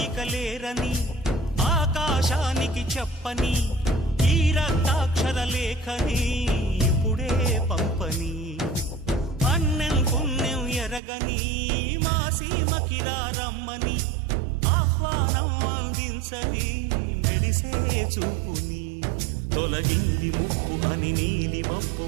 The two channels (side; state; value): left; drops out; at 11.0 s